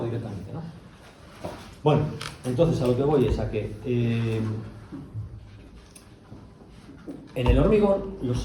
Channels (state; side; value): identical; both; correlation 1.00